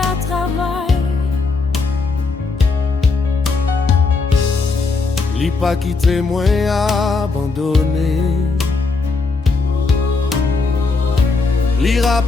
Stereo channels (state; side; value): quieter; right; 4.1 dB